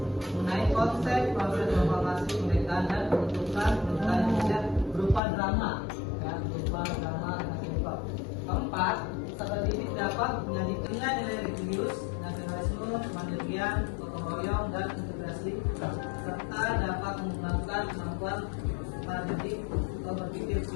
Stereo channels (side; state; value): right; drops out; at 5.2 s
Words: mengenai konsep proses proklamasi kemerdekaan dan penunjukan pemerintahan Indonesia berupa drama, ya, berupa drama dan simple. Keempat, peserta didik dapat menyajikan nilai-nilai religius, nasionalisme, kemandirian, gotong royong, dan integrasi, serta dapat mengembangkan kemampuan para didik untuk berpikir